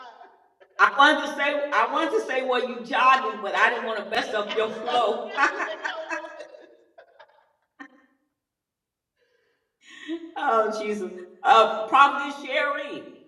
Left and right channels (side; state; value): both; identical; correlation 1.00